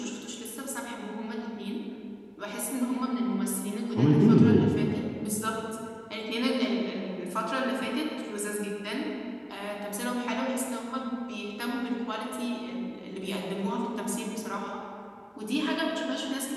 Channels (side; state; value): both; identical; correlation 1.00